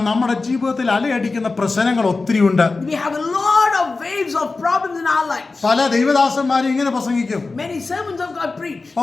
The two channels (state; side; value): quieter; right; 3.8 dB